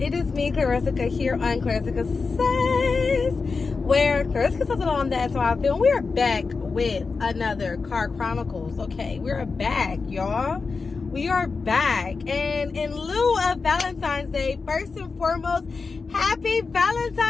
is me, Clarissa, here on Clarissa Says, where Clarissa says it on That's How I Feel. We are back with another Car Chronicles, okay? We are back, y'all. We are back. And in lieu of Valentine's Day, first and foremost, happy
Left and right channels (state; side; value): quieter; right; 4.5 dB